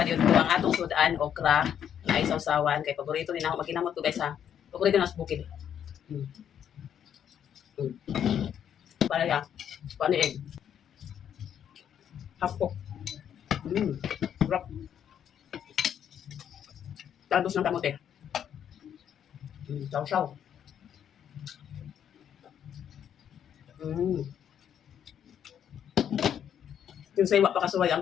ko ang atong sudan, okra, na isaw-sawan. Kay paborito din ako maginamot ko guys ha. Paborito na sa bukid. Para ya, paniig. Hapok. Sarap. Talbos ng kamote. Saw-saw. Yung sa iwa pa kasuway, ang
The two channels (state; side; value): quieter; right; 9.2 dB